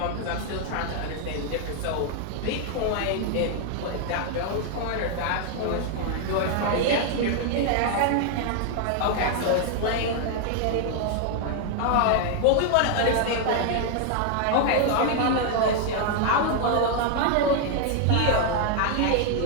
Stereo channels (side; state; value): both; different; correlation 0.00